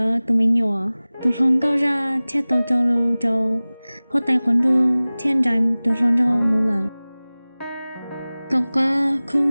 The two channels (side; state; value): both; inverted; correlation -0.99